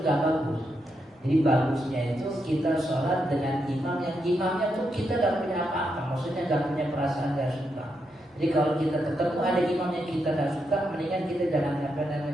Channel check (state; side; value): normal; both; correlation 0.82